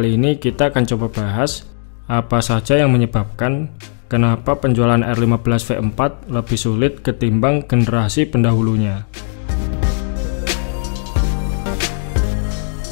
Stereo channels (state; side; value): silent; right; digital silence